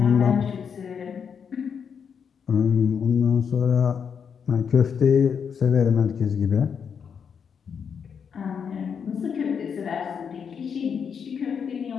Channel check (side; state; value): right; quieter; 6.9 dB